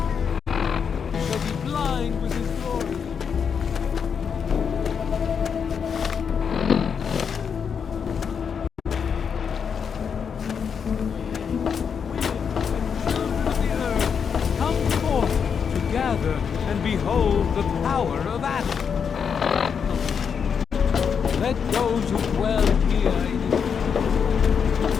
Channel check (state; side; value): quieter; right; 6.7 dB